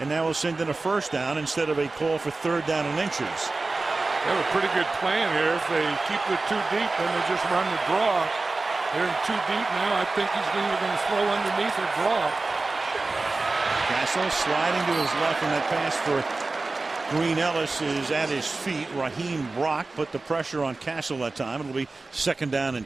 now we'll send in a 1st down instead of a call for 3rd down and inches. They have a pretty good plan here. If they keep it too deep, then they just run the draw. They're in too deep now. I think he's either going to throw underneath or draw. Castle sliding to his left, and that pass for Green Ellis is at his feet. Raheem Brock put the pressure on Castle that time. It'll be 2nd down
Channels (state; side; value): quieter; left; 3.5 dB